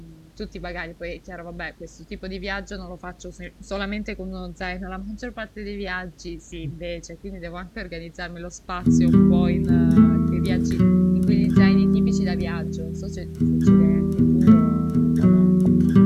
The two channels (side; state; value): both; identical; correlation 1.00